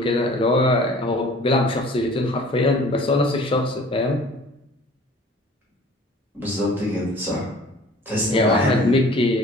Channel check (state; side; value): normal; both; correlation 0.48